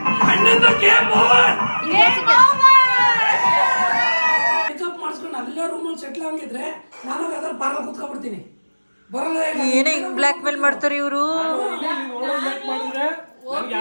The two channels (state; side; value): inverted; both; correlation -1.00